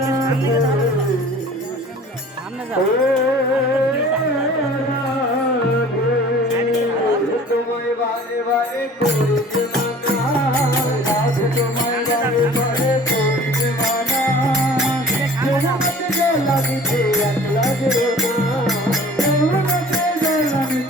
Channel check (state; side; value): normal; both; correlation 0.46